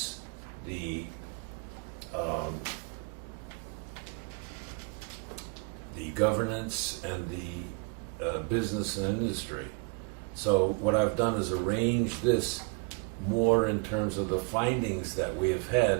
the governance, and the business and industry. So what I've done is arrange this more in terms of the findings that we have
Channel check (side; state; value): left; quieter; 31.6 dB